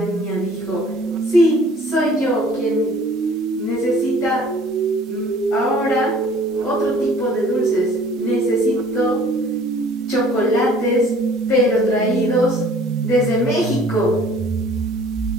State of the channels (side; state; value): both; normal; correlation 0.53